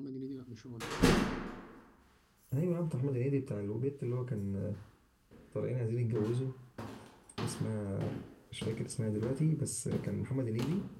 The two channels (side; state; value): both; identical; correlation 1.00